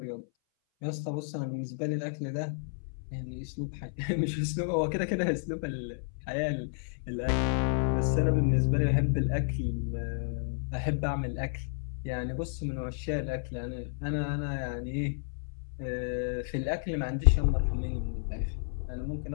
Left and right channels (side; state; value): right; silent; 57 dB below the other